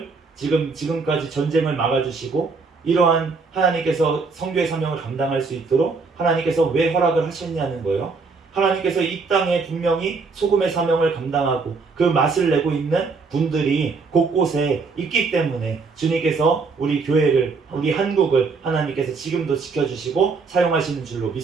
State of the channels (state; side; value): quieter; left; 4.5 dB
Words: 지금까지 전쟁을 막아주시고 이러한 하나님께서 선교의 사명을 감당할 수 있도록 하나님께서 왜 허락을 하셨냐는 거예요. 하나님께서 이 땅에 분명히 소금의 사명을 감당하고 그 맛을 내고 있는 분들이 곳곳에 있기 때문에 주님께서 우리 교회를, 우리 한국을 하나님께서 지금도 지켜주시고 사용하시는 줄로